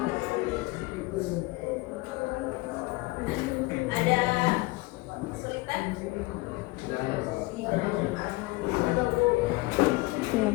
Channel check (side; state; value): right; quieter; 23.3 dB